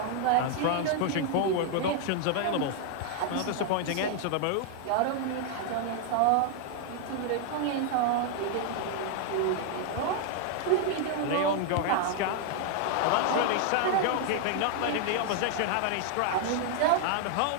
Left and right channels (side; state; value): both; different; correlation 0.00